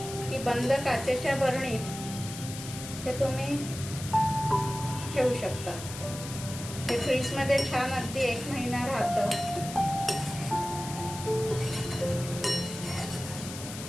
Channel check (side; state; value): left; noise; hiss, 10 dB below the sound